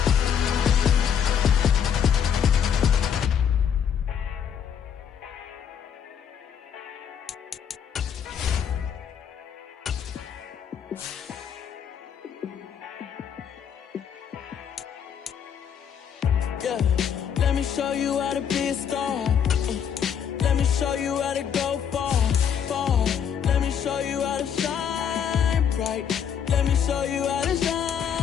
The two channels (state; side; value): quieter; right; 8.1 dB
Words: Yeah, let me show you how to be a star. Let me show you how to go far, far. Let me show you how to shine bright. Let me show you how to